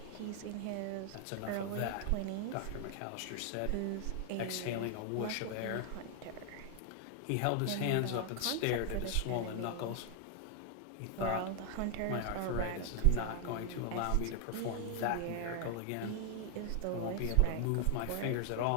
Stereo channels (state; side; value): different; both; correlation 0.00